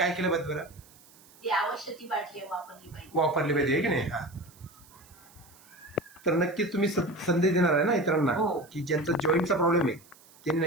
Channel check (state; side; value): noise; right; hiss, 25 dB below the sound